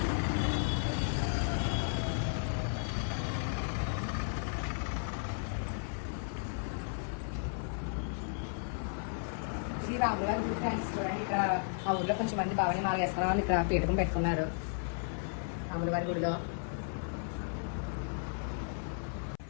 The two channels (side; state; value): right; silent; 55 dB below the other